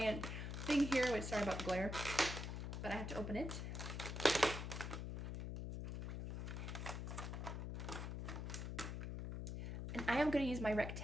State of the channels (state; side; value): noise; left; hum, 4 dB below the sound